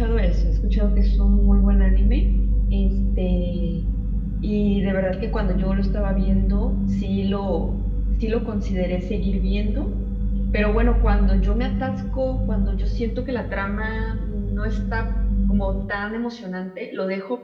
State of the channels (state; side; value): identical; both; correlation 1.00